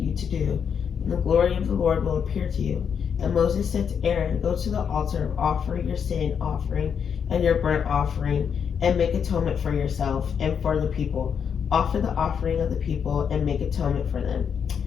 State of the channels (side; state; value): right; quieter; 7.3 dB